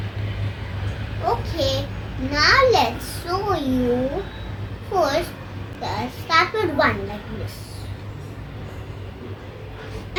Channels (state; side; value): identical; both; correlation 1.00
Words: Okay, now let's show you. First, start with one like this,